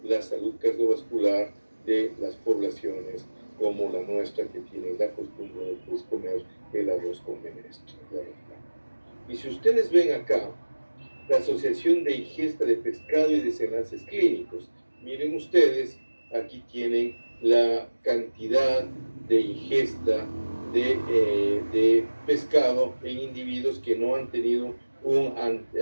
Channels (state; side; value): inverted; both; correlation -1.00